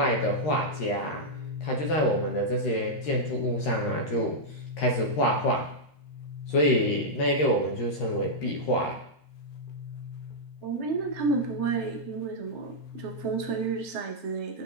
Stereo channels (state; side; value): late; right; 13 ms